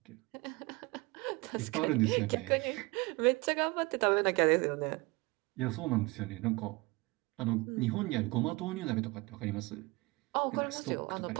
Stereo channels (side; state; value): left; quieter; 24.0 dB